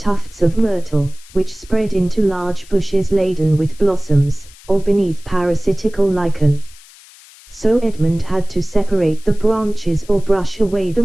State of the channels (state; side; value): noise; left; hiss, 23 dB below the sound